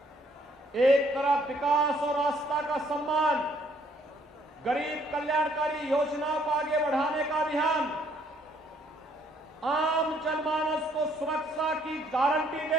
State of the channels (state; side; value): normal; both; correlation 0.66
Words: एक तरफ विकास और आस्था का सम्मान, गरीब कल्याणकारी योजनाओं को आगे बढ़ाने का अभियान, आम जनमानस को सुरक्षा की गारंटी